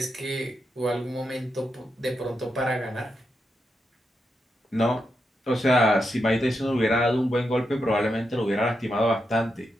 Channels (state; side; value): normal; both; correlation 0.85